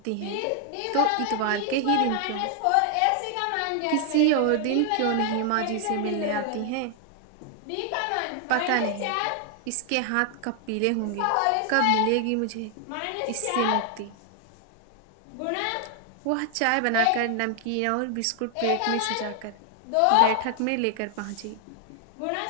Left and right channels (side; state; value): both; different; correlation 0.00